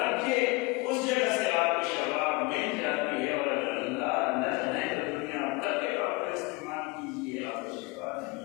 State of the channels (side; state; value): right; quieter; 25.7 dB